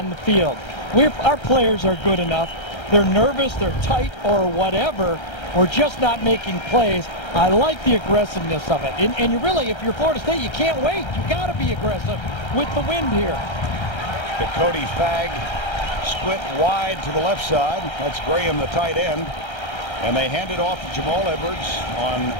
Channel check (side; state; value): right; late; 1.3 ms